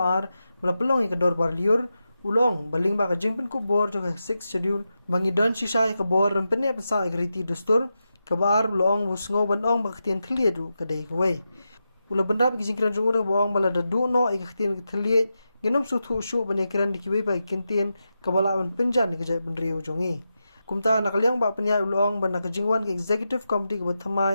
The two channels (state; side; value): inverted; both; correlation -0.89